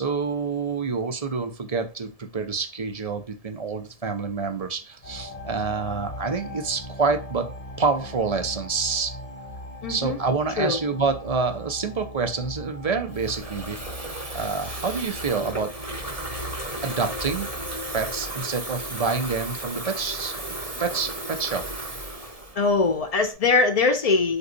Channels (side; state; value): right; late; 1.7 ms